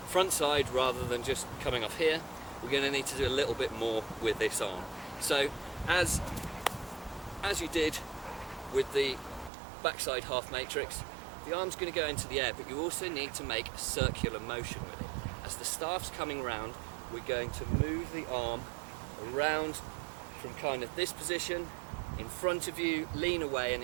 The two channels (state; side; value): drops out; left; at 9.5 s